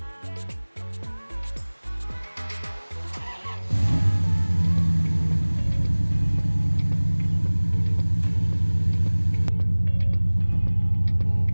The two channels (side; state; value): both; inverted; correlation -1.00